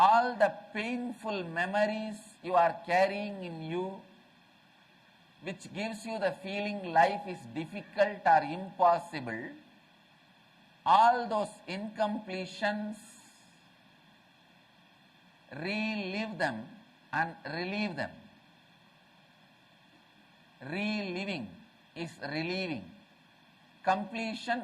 the painful memories you are carrying in you, which gives you the feeling life is difficult or impossible. All those incompletions, relive them and relieve them. Reliving is relieving. Completion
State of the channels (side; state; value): both; identical; correlation 1.00